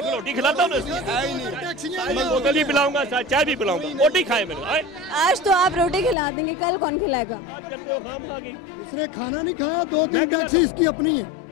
रोटी खिलाता हूँ, बोतल भी पिलाऊंगा, चाय भी पिलाऊंगा। रोटी खाए मैंने। आज तो आप रोटी खिला देंगे, कल कौन खिलाएगा? आप कहते हो खाम खा गई। इसने खाना नहीं खाया, 2-3 टैक्सी इसकी अपनी है।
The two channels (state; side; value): drops out; right; at 6.2 s